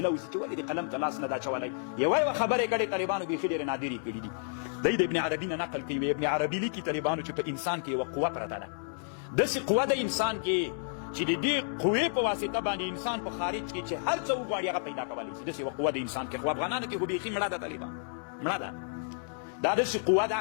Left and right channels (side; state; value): right; silent; digital silence